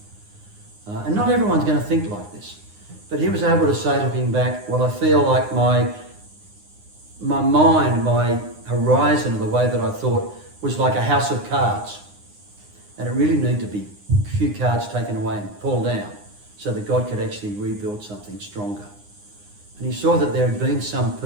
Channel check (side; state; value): left; late; 9.7 ms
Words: And not everyone's going to think like this. But he was able to say, looking back, well, I feel like my mind, my horizon of the way that I thought was like a house of cards. And it really needed to be a few cards taken away and pulled down so that God could actually rebuild something stronger. And he saw that there had been some